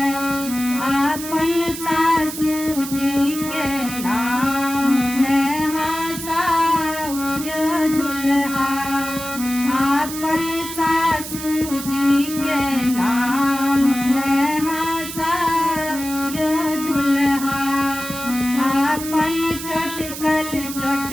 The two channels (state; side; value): noise; right; hiss, 9 dB below the sound